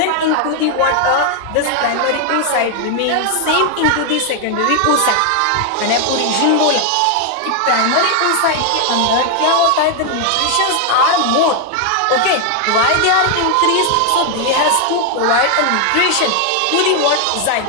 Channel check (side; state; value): both; different; correlation 0.00